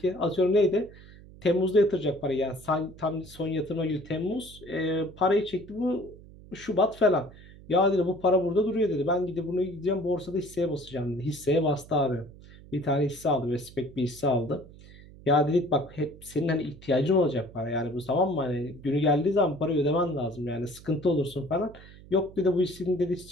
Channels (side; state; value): right; noise; hum, 20 dB below the sound